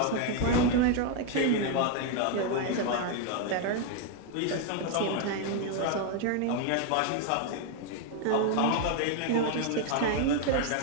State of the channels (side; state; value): both; different; correlation 0.01